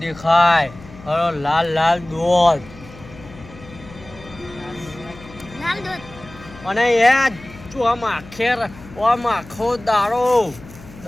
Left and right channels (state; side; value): noise; left; hum, 19 dB below the sound